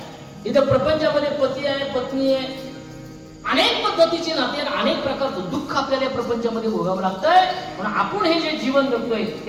इथं प्रपंचामध्ये पती आहे, पत्नी आहे, अनेक पद्धतीचे नाते, अनेक प्रकारचं दुःख आपल्याला या प्रपंचामध्ये भोगावं लागतंय. पण आपण हे जे जीवन जगतोय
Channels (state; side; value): identical; both; correlation 1.00